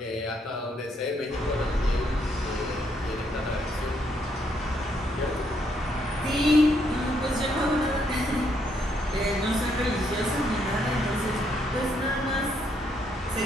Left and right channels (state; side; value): normal; both; correlation 0.74